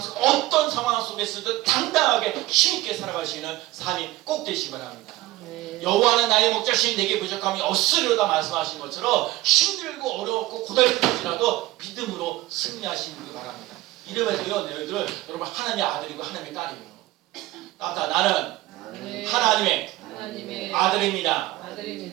어떤 상황 속에서도 당당하게 힘있게 살아가시는 삶이 꼭 되시기 바랍니다. 여호와는 나의 목자신 내게 부족함이 없으리로다 말씀하신 것처럼 힘들고 어렵고 고달플지라도 믿음으로 승리하시기 바랍니다. 이름에도요 너희들 여러분 하나님의 아들이고 하나님의 딸이에요. 나는 하나님의 아들입니다.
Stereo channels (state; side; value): quieter; left; 17.3 dB